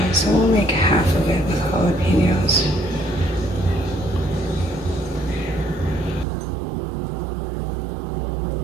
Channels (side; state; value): left; drops out; at 6.2 s